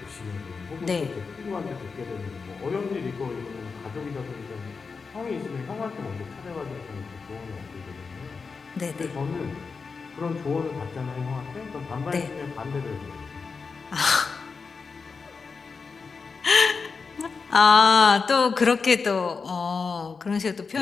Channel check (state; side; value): quieter; right; 4.9 dB